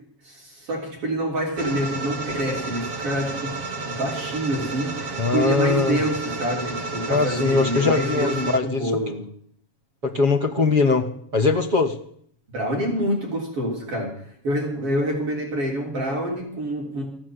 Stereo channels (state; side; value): late; left; 7.2 ms